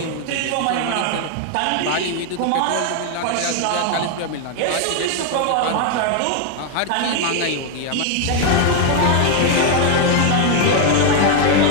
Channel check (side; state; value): both; different; correlation 0.00